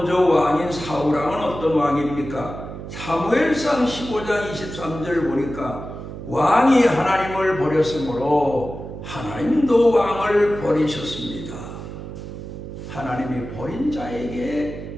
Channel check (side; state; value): right; noise; hum, 10 dB below the sound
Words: 왕인 사울왕은 어떤 왕입니까? 사무엘상 15장 23절 보니까 왕이 하나님을 버렸으므로 하나님도 왕을 버리셨습니다. 하나님이 버린